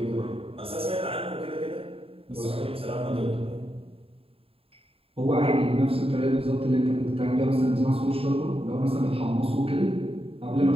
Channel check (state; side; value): late; left; 0.27 ms